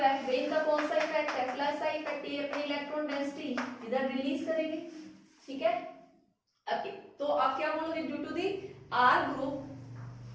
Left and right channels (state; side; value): identical; both; correlation 1.00